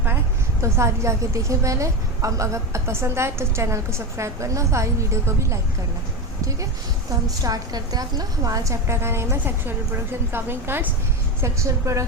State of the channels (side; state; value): both; normal; correlation 0.18